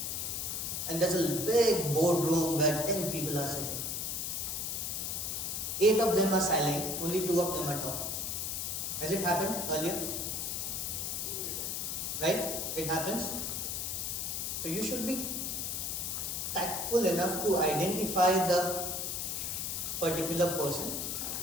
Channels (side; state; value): left; noise; hiss, 2 dB below the sound